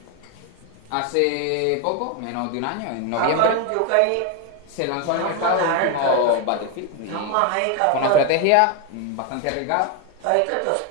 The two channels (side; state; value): both; different; correlation 0.01